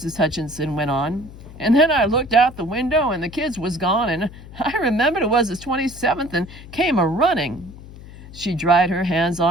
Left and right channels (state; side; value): noise; left; hum, 17 dB below the sound